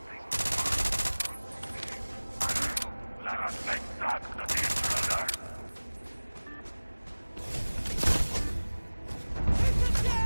Let us make that to the intruder!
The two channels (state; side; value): inverted; both; correlation -1.00